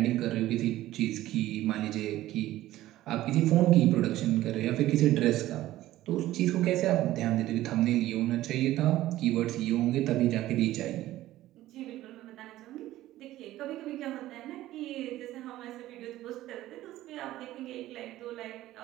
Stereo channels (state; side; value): quieter; left; 15.1 dB